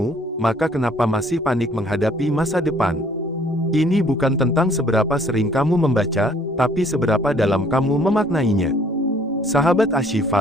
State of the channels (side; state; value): both; normal; correlation 0.59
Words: maka kenapa masih panik menghadapi masa depan? Ini bukan tentang seberapa sering kamu membaca, tapi seberapa dalam kamu memaknainya. Sahabat